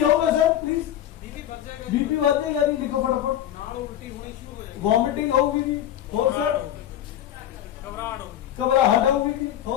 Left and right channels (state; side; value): quieter; right; 11.5 dB